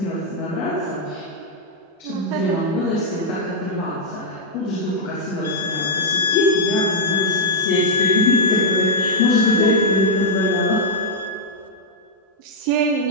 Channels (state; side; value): normal; both; correlation -0.06